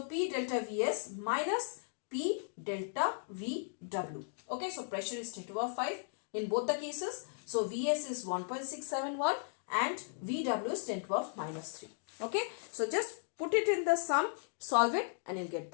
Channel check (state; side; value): silent; right; digital silence